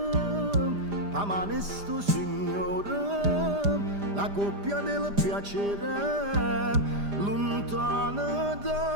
a mano sto signore, la coppia del piacere, lontana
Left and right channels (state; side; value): late; left; 5.0 ms